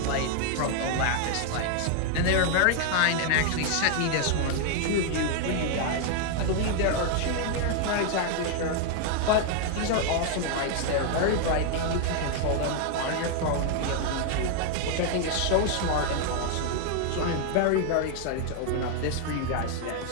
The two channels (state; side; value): different; both; correlation 0.00